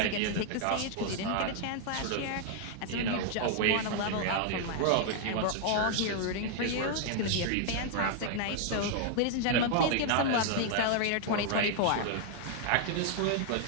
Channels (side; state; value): both; different; correlation 0.00